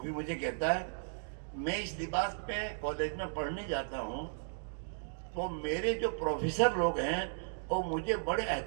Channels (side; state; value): left; silent; digital silence